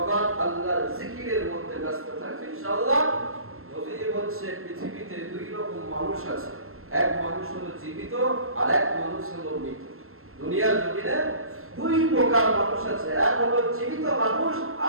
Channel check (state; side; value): late; left; 0.62 ms